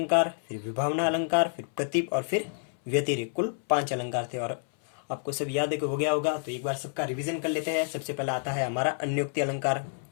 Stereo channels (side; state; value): right; silent; 59 dB below the other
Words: फिर विभावना अलंकार, फिर प्रतीप और फिर व्यतिरेक। कुल 5 अलंकार थे, और आपको सब याद है कि हो गया होगा। तो एक बार सबका रिवीजन कर लेते हैं। सबसे पहला आता है हमारा अन्योक्ति अलंकार।